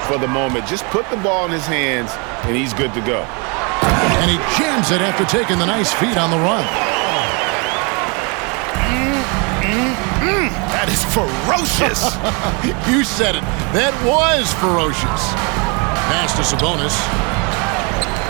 for the moment. Just put the ball in his hands, and he's good to go. And he jams it after taking the nice feed on the run. That is ferocious. You said it. That was ferocious. Pass to Sabonis.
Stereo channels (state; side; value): quieter; left; 32.5 dB